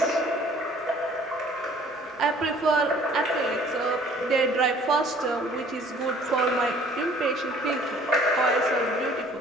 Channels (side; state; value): both; normal; correlation 0.54